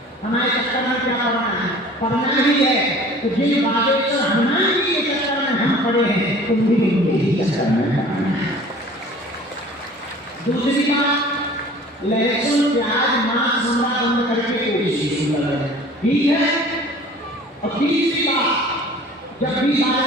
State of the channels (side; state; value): both; normal; correlation 0.46